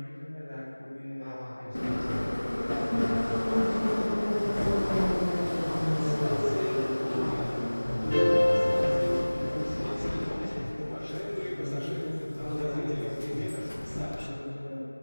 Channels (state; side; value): inverted; both; correlation -1.00